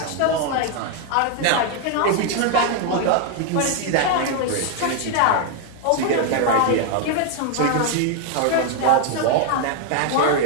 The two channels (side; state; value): both; different; correlation 0.00